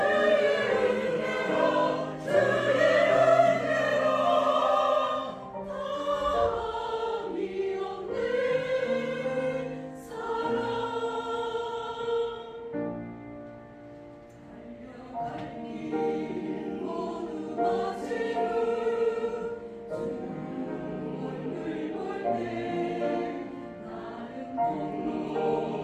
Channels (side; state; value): both; identical; correlation 1.00